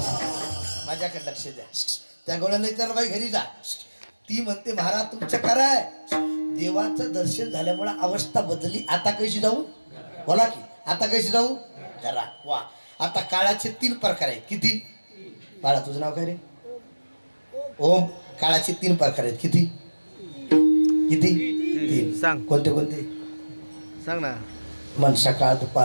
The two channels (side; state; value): both; inverted; correlation -1.00